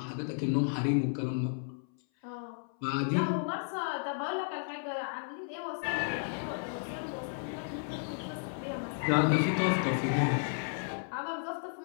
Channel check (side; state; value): right; silent; 56 dB below the other